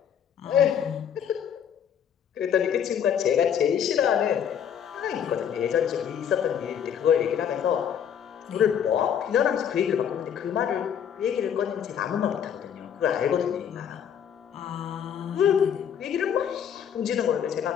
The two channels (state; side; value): quieter; right; 8.5 dB